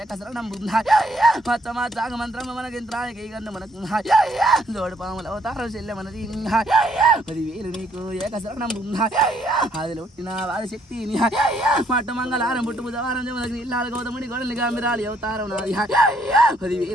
ఏకశరణం మచ్చమా జాగ మంత్రమ మనకింత్రానికి గన్ను మనకు జోడు పాముల అవతారం చెల్లె మనది 10,000 నీకు ఏకశరణం ఆదిలో ఒట్టిన వారి శక్తిని మట్ట మంగళారం పుట్టు బుధవారం జమదగ్ని ఇల్లాల గౌతముడి గొడవలి గామిరాలి అవతారం నాది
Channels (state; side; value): normal; both; correlation 0.69